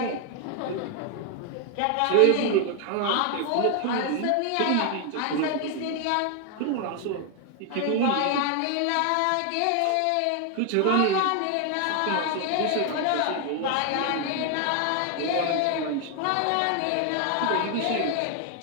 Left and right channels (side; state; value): both; different; correlation 0.00